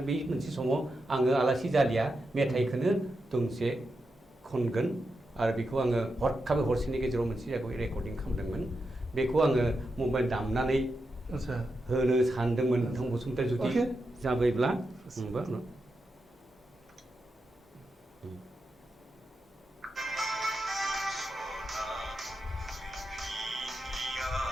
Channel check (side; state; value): both; normal; correlation 0.87